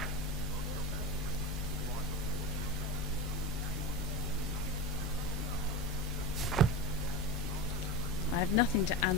I have nothing to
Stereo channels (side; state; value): both; normal; correlation 0.24